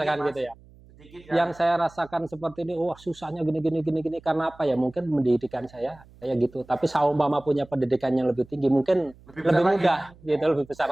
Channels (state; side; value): noise; right; hum, 25 dB below the sound